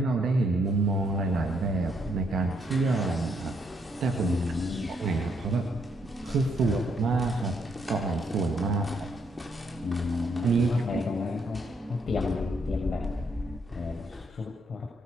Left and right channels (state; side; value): normal; both; correlation 0.73